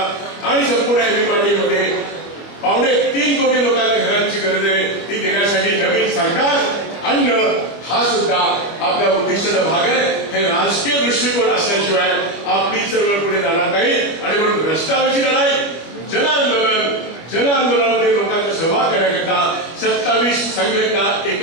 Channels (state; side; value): late; right; 25 ms